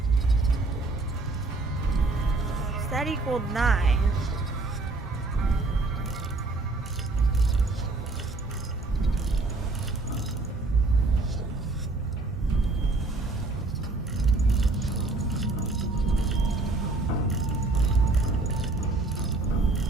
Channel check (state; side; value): quieter; left; 3.3 dB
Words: So that equaled 9.